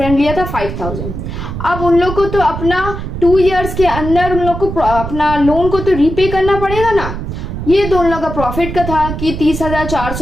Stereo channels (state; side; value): noise; right; rumble, 6 dB below the sound